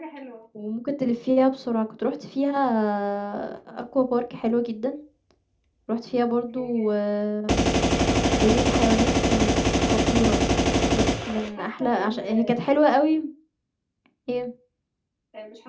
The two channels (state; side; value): identical; both; correlation 1.00